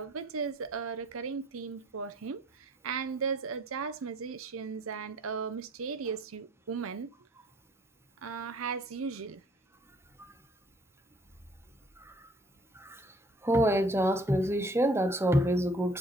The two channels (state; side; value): normal; both; correlation 0.58